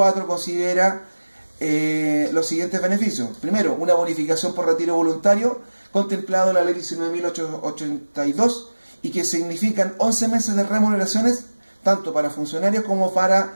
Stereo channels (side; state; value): both; inverted; correlation -1.00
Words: considera los siguientes beneficios. Primero, una bonificación por retiro voluntario, contemplado en la ley 19.882, y que significan 11 meses de remuneraciones, tanto para funcionarios como para